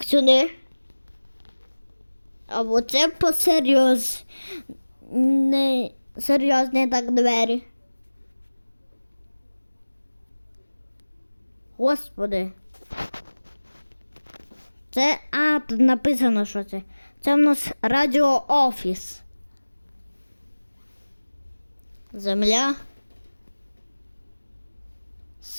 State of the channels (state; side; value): inverted; both; correlation -1.00